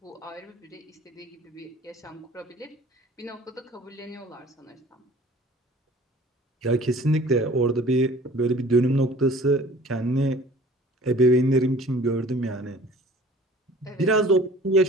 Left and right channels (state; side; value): normal; both; correlation 0.48